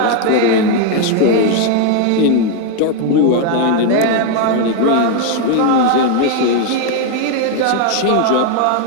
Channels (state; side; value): different; both; correlation 0.01